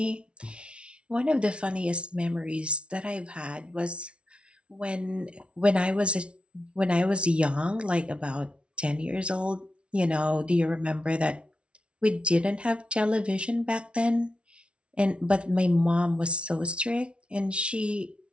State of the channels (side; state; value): left; late; 0.059 ms